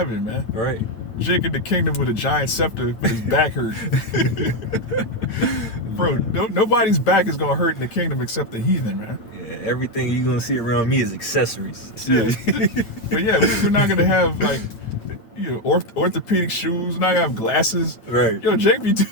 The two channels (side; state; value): right; late; 9.0 ms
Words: man. Right. Jake in the kingdom with a giant scepter, but his back hurt. Bro, nobody's back is gonna hurt in the kingdom except the heathen, man. Yeah, everything you're gonna see around me is accessories. Yeah. But yeah, we're not gonna have like, you know, orthopedic shoes. We're not gonna have glasses. Right. Yo, Jake be